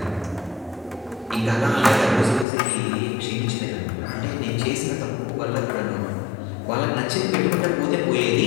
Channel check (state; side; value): drops out; right; at 2.5 s